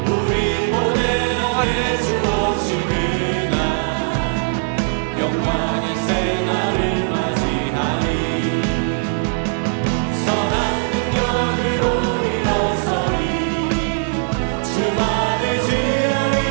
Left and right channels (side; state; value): left; silent; 61 dB below the other